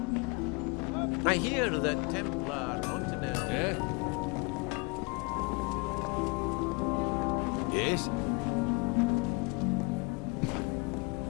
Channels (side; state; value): right; quieter; 30.3 dB